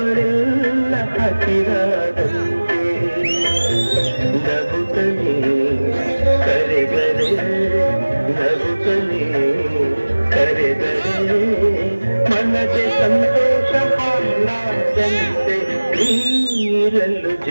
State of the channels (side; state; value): both; inverted; correlation -1.00